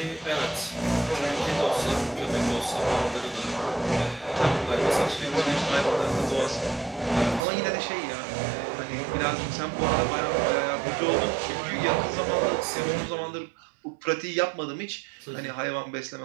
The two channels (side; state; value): left; drops out; at 7.4 s